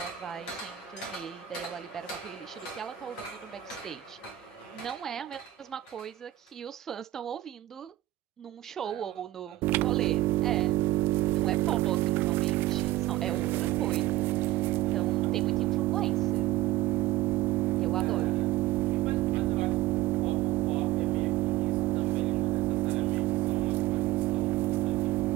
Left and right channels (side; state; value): left; quieter; 15.7 dB